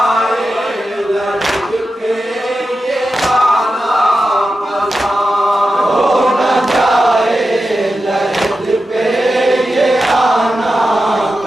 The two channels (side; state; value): both; normal; correlation 0.91